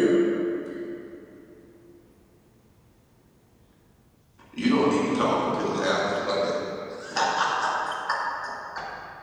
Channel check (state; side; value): identical; both; correlation 1.00